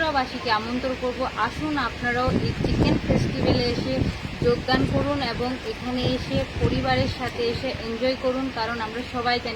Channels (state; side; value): identical; both; correlation 1.00